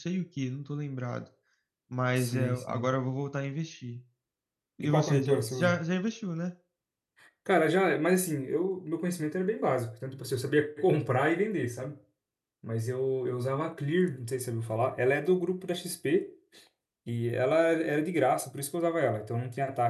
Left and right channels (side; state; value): both; identical; correlation 1.00